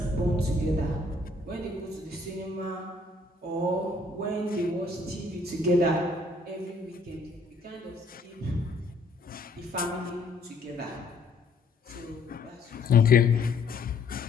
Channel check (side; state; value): right; quieter; 3.1 dB